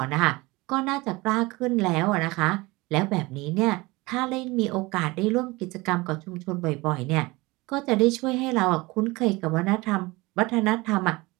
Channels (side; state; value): left; quieter; 22.6 dB